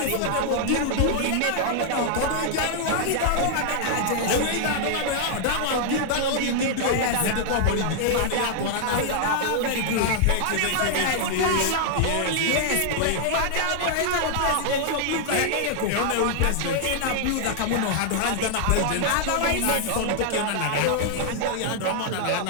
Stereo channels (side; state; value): both; different; correlation -0.01